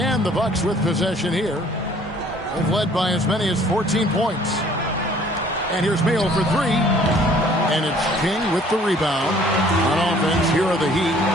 the Bucks with possession here. They've led by as many as 14 points. And here's Mayo for 3. And it's King with the rebound. On offense, here are the Heat.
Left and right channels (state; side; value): normal; both; correlation 0.56